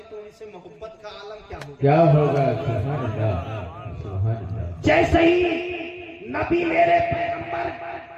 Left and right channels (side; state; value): both; identical; correlation 1.00